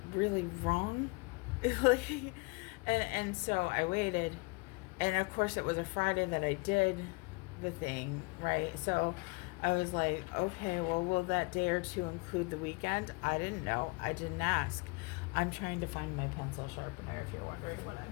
really wrong? and so I waited, and of course it was a Friday that I did the thing, right? So I was like, okay, well, will that day or two include the weekend? I didn't know. I didn't ask. I'm trying to find my pencil sharpener, if you're wondering what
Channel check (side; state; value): right; quieter; 27.8 dB